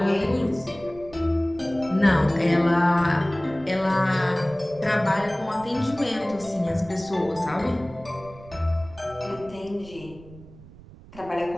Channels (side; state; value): right; noise; rumble, 20 dB below the sound